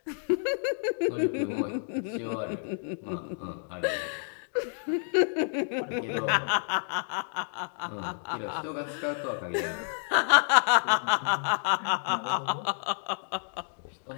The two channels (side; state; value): right; silent; digital silence